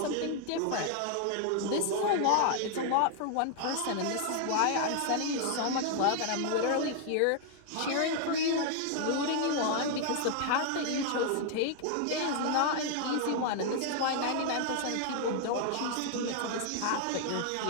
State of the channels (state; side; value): different; both; correlation 0.00